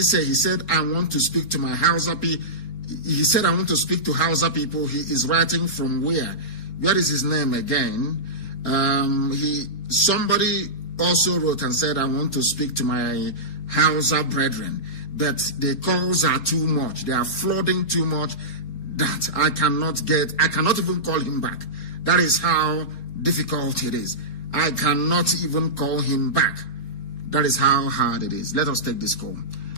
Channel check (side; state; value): right; late; 4.1 ms